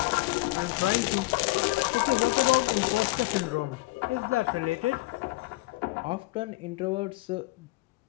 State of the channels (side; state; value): right; quieter; 21.4 dB